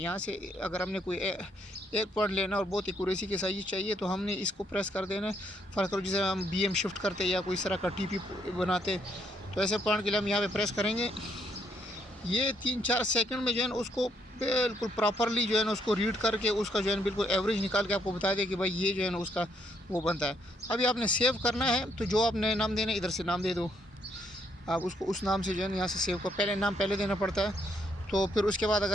से अगर हमने कोई एक पॉइंट लेना और बहुत एक्यूरेसी के साथ चाहिए तो हमने इसको प्रेस कर देना है। फ़र्ज़ करो जैसे हम बीएम शिफ्ट करते या कोई इस तरह का टीपी बनाते, तो ऐसे पॉइंट के लिए हम यहाँ पे प्रेस करेंगे। ये 3-4 सेकंड में जो है ना उसको बिल्कुल प्रॉपरली जो है ना उसको रीड करके उसका जो है ना बिल्कुल एवरेज निकाल के आपको बता दे कि भाई ये जो है ना उसका वो बनता है। अभी आपने सेव करना है तो जो आपने नाम देना है इधर से नाम दे दो। आप उसको उस नाम से जो है ना यहाँ से सेव को पहले नाम पहले देना पड़ता है। तो फिर उसके बाद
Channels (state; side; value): normal; both; correlation 0.72